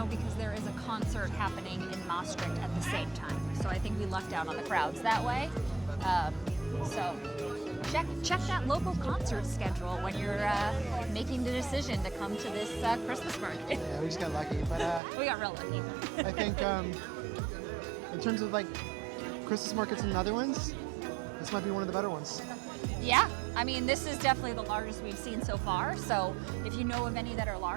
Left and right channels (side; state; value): left; drops out; at 15.0 s